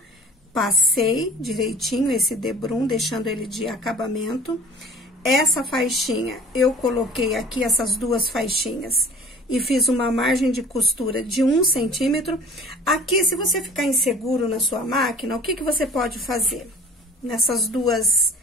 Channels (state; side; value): normal; both; correlation 0.46